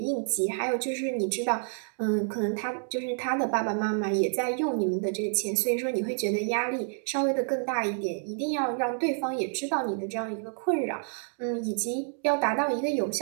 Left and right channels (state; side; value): silent; left; 59 dB below the other